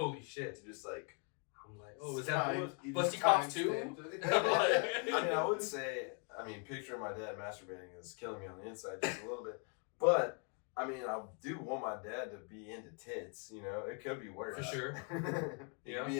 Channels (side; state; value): right; quieter; 37.3 dB